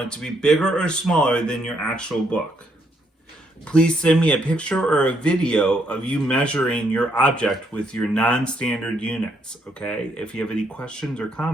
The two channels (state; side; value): normal; both; correlation 0.73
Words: it to be bigger or smaller than your actual book. Please send me a picture or a video of you measuring your object with your non-standard units, okay? If you have any questions or